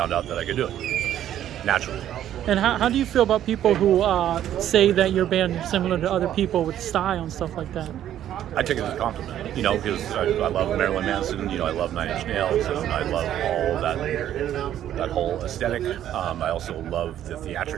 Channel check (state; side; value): quieter; left; 11.4 dB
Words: out that I could do it naturally. And how do you feel about people who say that your band is similar to other people with style and stuff like that? I take it as a compliment, you know, because I love Marilyn Manson, you know, I love Nine Inch Nails, and I love all that whole aesthetic. I also love the